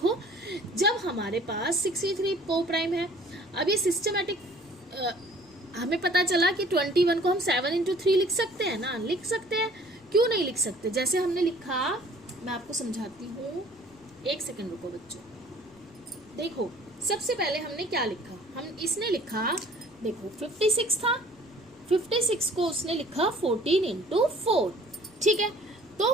जब हमारे पास 63 को प्राइम है, अब ये सिस्टमेटिक हमें पता चला कि 21 को हम 7 इंटू 3 लिख सकते हैं ना, लिख सकते हैं, क्यों नहीं लिख सकते. जैसे हमने लिखा, मैं आपको समझाती हूँ, एक सेकंड रुको बच्चों. देखो सबसे पहले हमने क्या लिखा, हम इसने लिखा, देखो 56 था, 56 को उसने लिखा 14 इंटू 4. ठीक है,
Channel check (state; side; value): noise; left; rumble, 27 dB below the sound